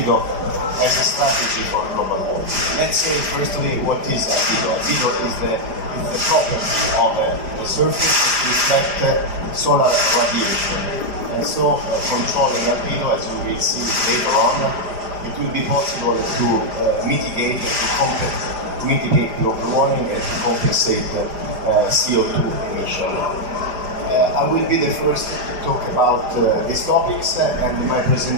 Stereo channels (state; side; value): late; left; 4.9 ms